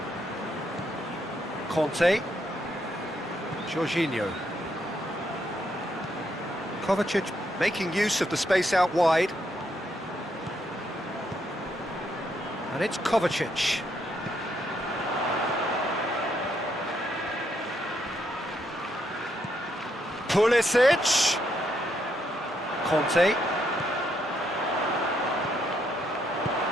Conte. Jorginho. Kovacic making use of the space out wide. And it's Kovacic. Pulisic. Conte.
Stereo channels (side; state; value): both; normal; correlation 0.76